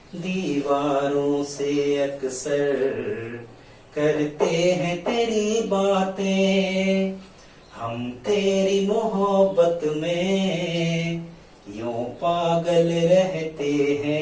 दीवारों से अक्सर करते हैं तेरी बातें, हम तेरी मोहब्बत में यूं पागल रहते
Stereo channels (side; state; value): both; identical; correlation 1.00